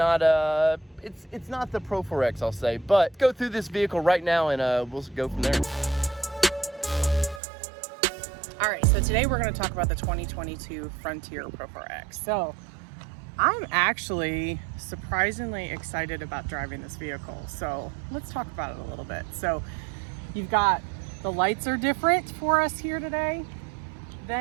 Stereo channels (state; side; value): drops out; left; at 7.4 s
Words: it's not the Pro4x, I'll say. But go through this vehicle right now, and we'll go from there. All right, so today we're going to talk about the 2022 Frontier Pro4x. So I'm actually surprisingly excited about driving this vehicle. So let's talk about it a little bit. So you've got the lights are different for us here today